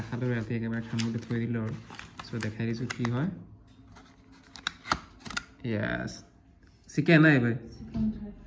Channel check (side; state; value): both; identical; correlation 1.00